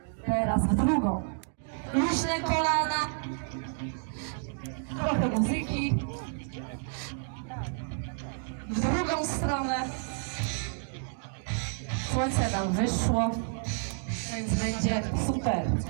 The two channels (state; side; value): silent; left; 58 dB below the other